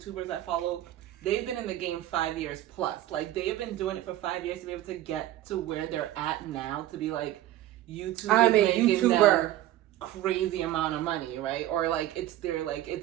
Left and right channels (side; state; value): left; quieter; 13.8 dB